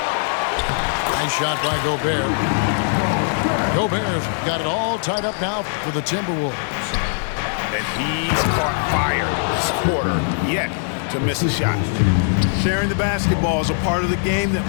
Nice shot by Gobert. Gobert's got it all tied up now for the Timberwolves. And he's caught fire this quarter, yet to miss a shot. Sharing the basketball is a part of the game that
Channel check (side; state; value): right; silent; 58 dB below the other